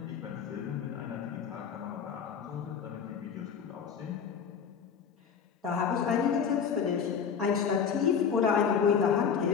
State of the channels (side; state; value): right; quieter; 6.9 dB